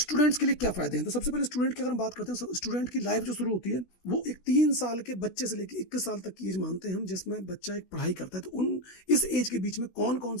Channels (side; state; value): right; late; 16 ms